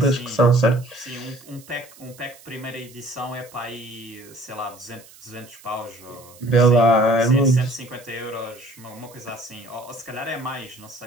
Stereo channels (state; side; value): noise; right; hiss, 22 dB below the sound